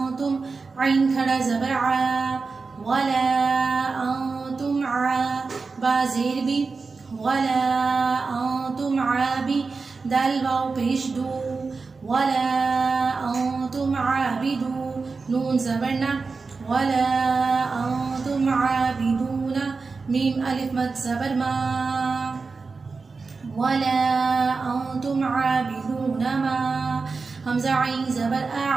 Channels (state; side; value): quieter; left; 4.4 dB